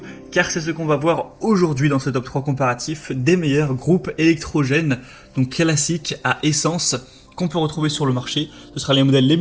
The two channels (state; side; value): identical; both; correlation 1.00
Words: car c'est ce qu'on va voir aujourd'hui dans ce top 3 comparatif des meilleurs groupes électrogènes, donc classiques à essence, qu'on peut retrouver sur le marché. Ce sera les modèles les